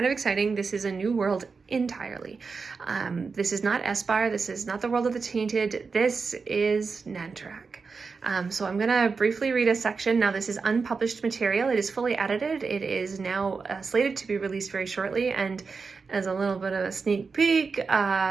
of exciting. This is a new world entirely. This is not Espire. This is not the world of the Tainted. This is Nantrak. So I'm going to briefly read a section. Now, this is unpublished material. It is fully edited. It is now slated to be released very shortly, and as a little bit of a sneak peek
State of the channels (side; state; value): left; quieter; 4.8 dB